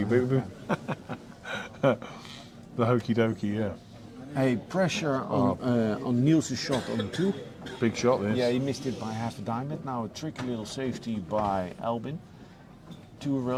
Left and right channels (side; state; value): both; identical; correlation 1.00